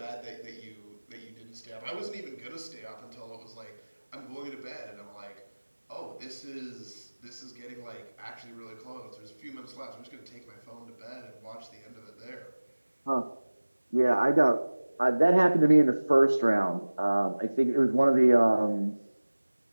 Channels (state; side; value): inverted; both; correlation -1.00